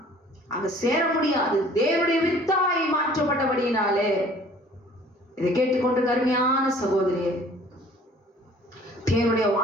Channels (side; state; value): both; normal; correlation 0.52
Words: அங்க சேர முடியாது. தேவனுடைய வித்தாய் மாற்றப்பட்டபடியினாலே. இதை கேட்டுக்கொண்டு கருமையான சகோதரியே, தேவனுடைய